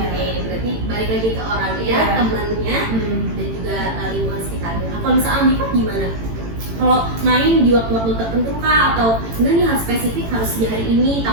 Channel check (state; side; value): late; left; 18 ms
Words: berarti balik lagi ke orangnya, Iya. temannya, Hmm. dan juga lingkungan sekitarnya. Nah, kalau misalnya ambivert gimana? Kalau main di waktu-waktu tertentu kah atau enggak nih harus spesifik harus di hari ini,